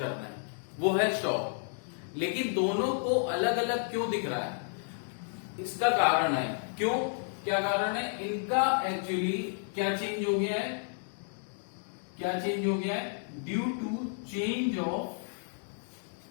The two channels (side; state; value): right; silent; digital silence